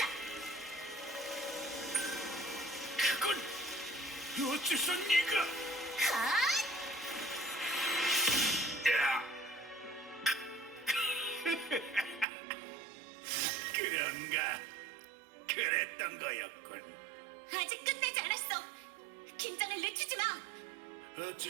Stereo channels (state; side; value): drops out; left; at 12.2 s